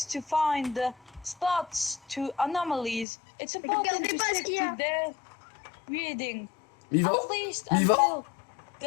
to find the spots to anomalies. It's important regardez to pas ce stick qu'il y a. to their reading. Mais il va... At least Mais il va- until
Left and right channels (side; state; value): right; drops out; at 3.1 s